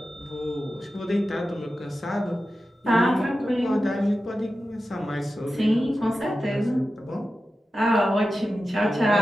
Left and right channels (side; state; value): both; normal; correlation 0.92